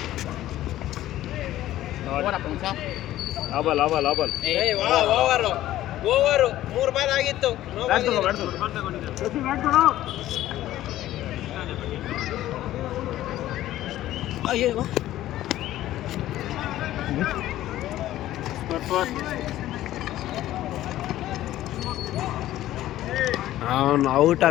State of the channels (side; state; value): right; quieter; 14.1 dB